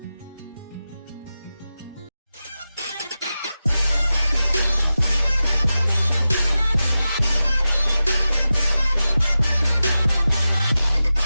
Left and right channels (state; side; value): inverted; both; correlation -0.93